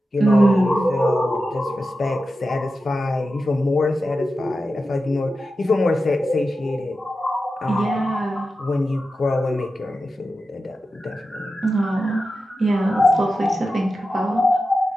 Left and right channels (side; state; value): both; normal; correlation 0.92